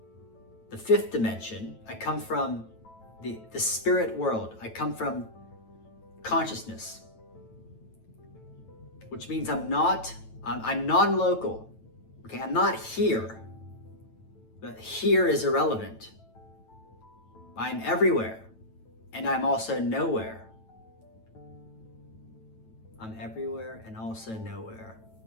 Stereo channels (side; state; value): right; late; 9.1 ms